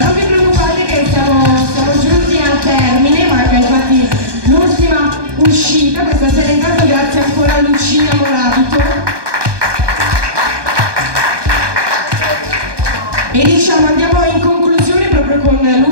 Siamo giunti al termine, manca infatti l'ultima uscita, questa sera intanto grazie ancora a Lucia Morabito. E diciamo andiamo in conclusione proprio con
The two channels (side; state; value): left; late; 1.2 ms